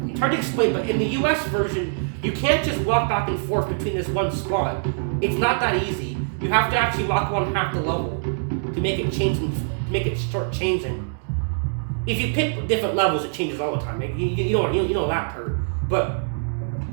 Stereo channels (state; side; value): silent; left; digital silence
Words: It's hard to explain, but in the US version, you can't just walk back and forth between this one spot. It's not that easy. You have to actually walk on half the level to make it change and make it start changing. If you pick different levels, it changes all the time. You know that part. But